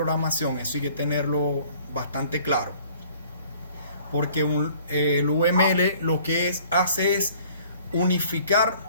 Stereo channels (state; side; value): inverted; both; correlation -0.54